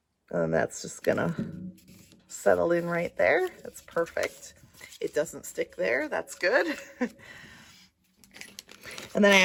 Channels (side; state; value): both; identical; correlation 1.00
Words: And that's just gonna settle in right there. That's perfect. It doesn't stick there. That's good. And then